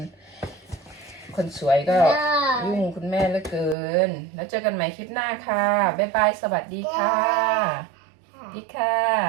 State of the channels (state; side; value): drops out; left; at 3.8 s